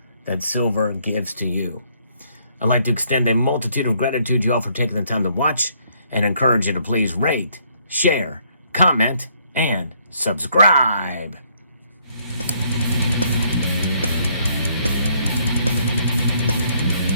that silver gives to you. I'd like to extend a multitude of gratitude to you all for taking the time to watch, and encourage you to please rate, share, comment, and subscribe.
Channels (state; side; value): inverted; both; correlation -0.68